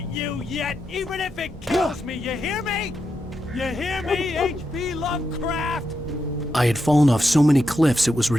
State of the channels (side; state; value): both; normal; correlation 0.85